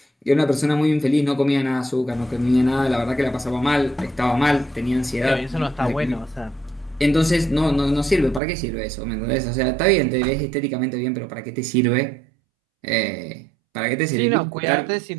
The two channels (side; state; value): left; drops out; at 8.4 s